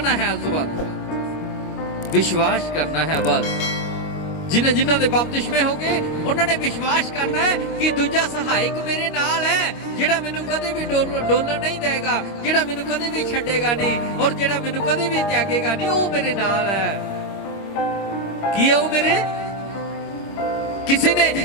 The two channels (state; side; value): late; right; 25 ms